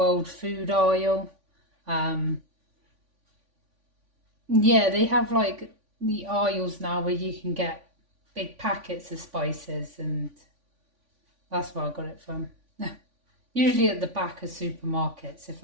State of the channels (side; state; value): left; late; 3.5 ms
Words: food aisle. Yeah, they have like the aisles now where you can get big packets of spices, and that's where I got it from. Usually at the back of supermarkets, if